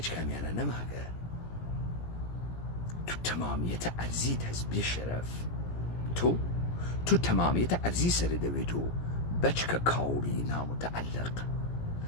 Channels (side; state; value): right; late; 17 ms